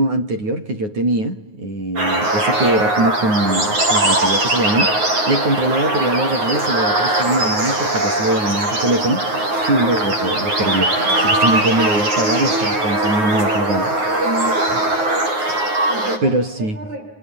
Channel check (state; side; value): late; left; 9.5 ms